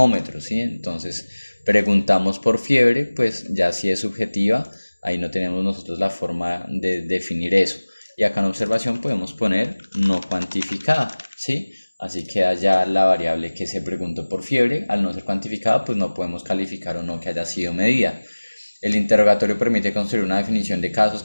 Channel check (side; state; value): both; inverted; correlation -1.00